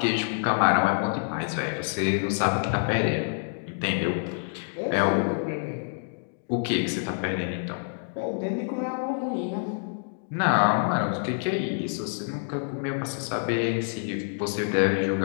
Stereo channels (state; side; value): silent; right; digital silence